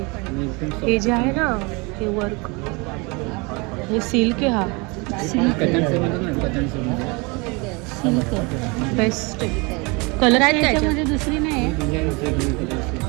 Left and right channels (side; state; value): left; quieter; 28.2 dB